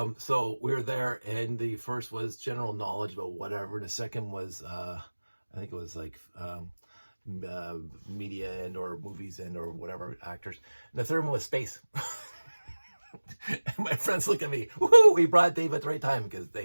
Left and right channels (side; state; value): both; inverted; correlation -1.00